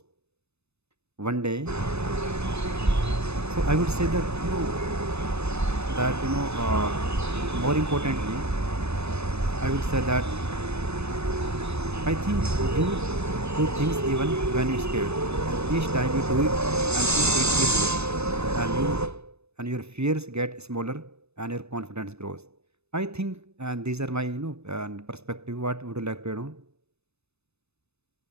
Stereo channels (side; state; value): left; late; 0.80 ms